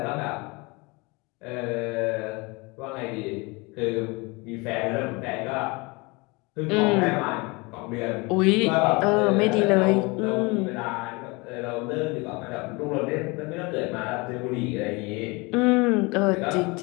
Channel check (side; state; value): right; quieter; 26.6 dB